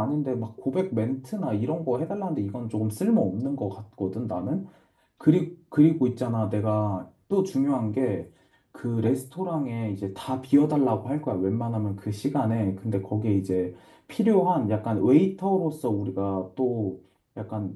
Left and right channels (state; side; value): identical; both; correlation 1.00